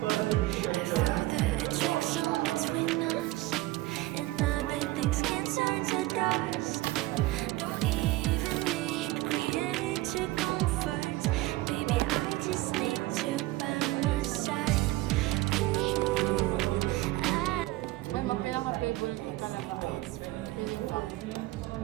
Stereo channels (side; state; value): left; quieter; 18.5 dB